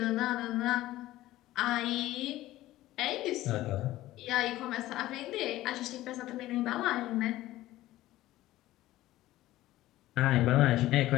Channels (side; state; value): right; quieter; 15.8 dB